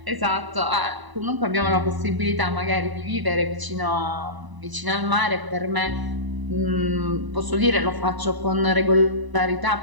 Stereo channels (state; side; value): late; left; 1.0 ms